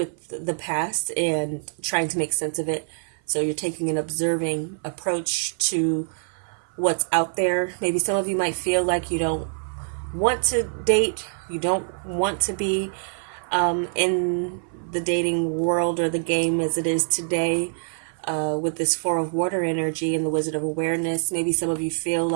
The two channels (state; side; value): silent; left; 56 dB below the other